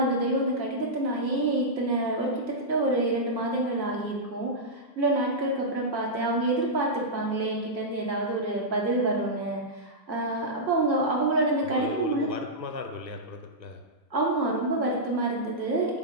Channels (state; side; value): late; left; 1.5 ms